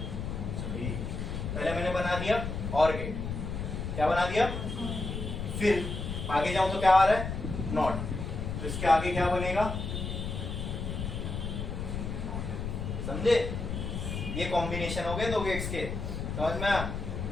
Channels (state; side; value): noise; left; rumble, 4 dB below the sound